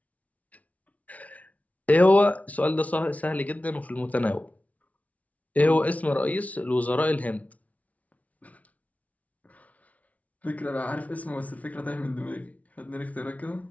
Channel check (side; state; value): right; late; 0.069 ms